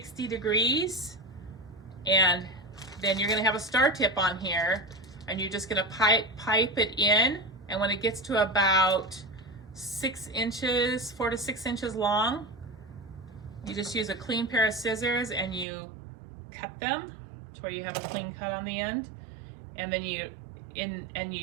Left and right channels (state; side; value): drops out; left; at 15.7 s